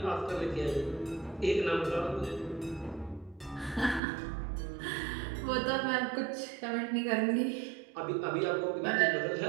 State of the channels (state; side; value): drops out; left; at 4.0 s